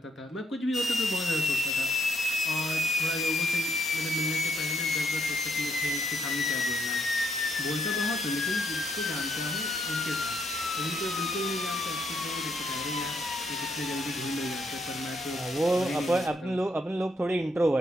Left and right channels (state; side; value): normal; both; correlation 0.74